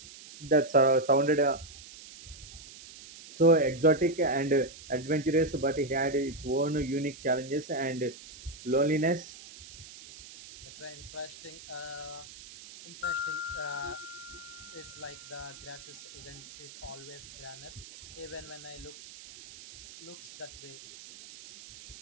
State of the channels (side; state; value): right; noise; hiss, 16 dB below the sound